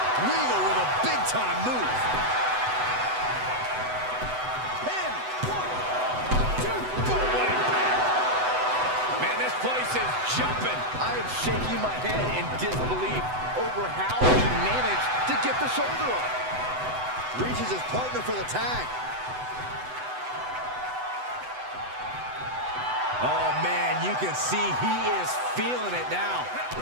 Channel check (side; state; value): left; late; 8.0 ms